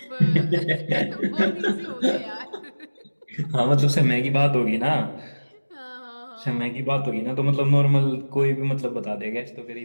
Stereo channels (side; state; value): both; inverted; correlation -1.00